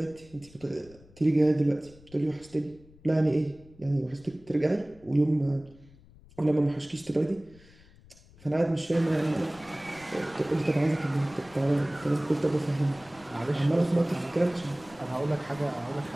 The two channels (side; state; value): left; noise; rumble, 24 dB below the sound